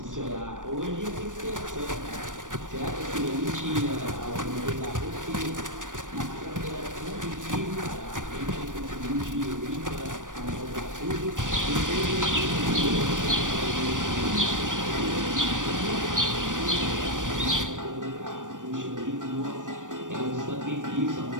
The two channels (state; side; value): late; left; 0.88 ms